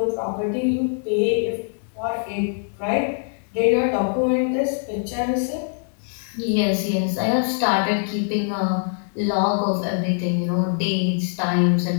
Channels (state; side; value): silent; right; 63 dB below the other